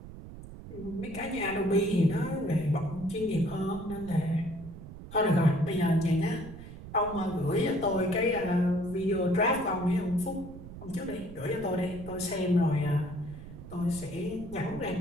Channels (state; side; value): noise; right; rumble, 13 dB below the sound